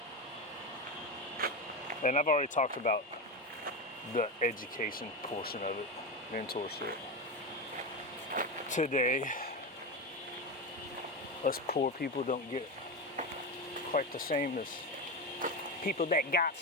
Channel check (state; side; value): normal; both; correlation 0.15